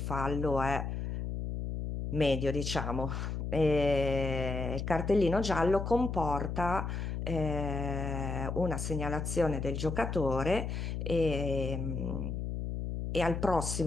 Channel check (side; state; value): left; noise; hum, 3 dB below the sound